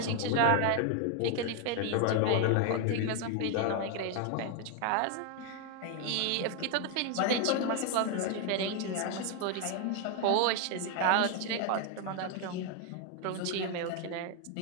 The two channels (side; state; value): both; different; correlation 0.01